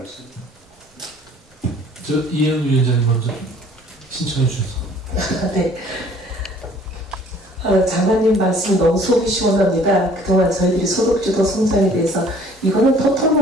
이혜은 위원장님 먼저 신청해 주셔서. 네. 장관님 말씀 너무 속이 시원합니다. 그동안 저희들이 소득주도 성장에 대해서 이거는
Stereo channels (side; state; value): both; normal; correlation 0.55